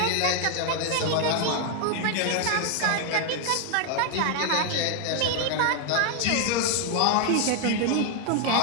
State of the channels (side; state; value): both; different; correlation 0.00